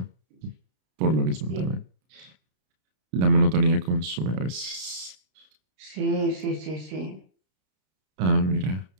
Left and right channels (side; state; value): left; late; 32 ms